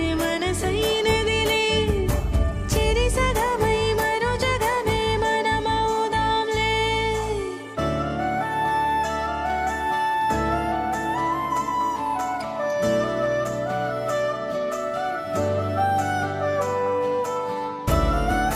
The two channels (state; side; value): identical; both; correlation 1.00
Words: మనసైనదిలే చెరి సగమై మరో జగమే మనమవుదాంలే